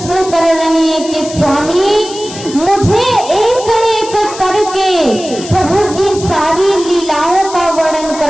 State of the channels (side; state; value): left; noise; hiss, 13 dB below the sound